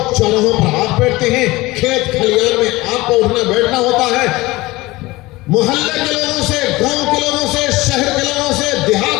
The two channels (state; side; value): quieter; right; 20.3 dB